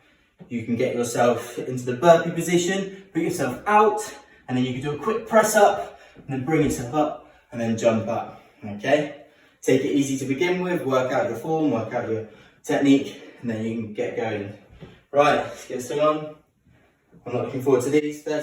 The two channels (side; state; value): both; identical; correlation 1.00